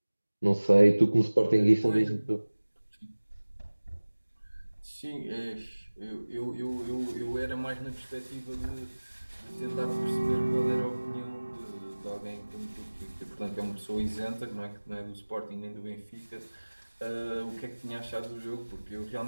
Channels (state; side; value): inverted; both; correlation -1.00